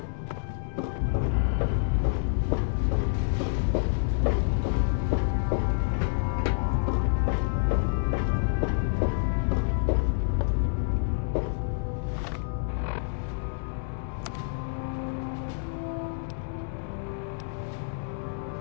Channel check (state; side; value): silent; right; digital silence